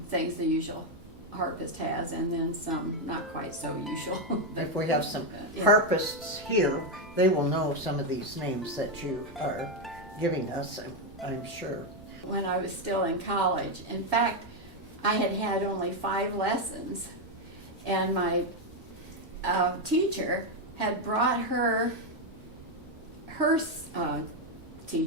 things the usual harpist has, and then some not quite so usual. If we have some harpists here, they will know some of these names that you are giving us, I'm sure. When I was still in college, in fact, I had only 5 lessons, and my teacher had brought her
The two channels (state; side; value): normal; both; correlation 0.05